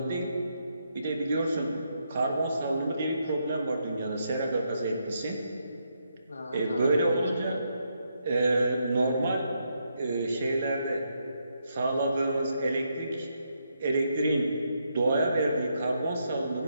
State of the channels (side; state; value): both; inverted; correlation -0.79